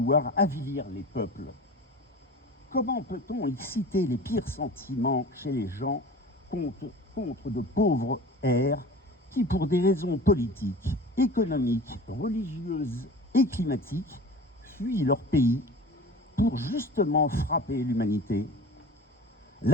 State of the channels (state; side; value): normal; both; correlation 0.37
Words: avilir les peuples? Comment peut-on exciter les pires sentiments chez les gens contre de pauvres airs qui, pour des raisons politiques, économiques, religieuses et climatiques, fuient leur pays pour justement frapper l'humanité?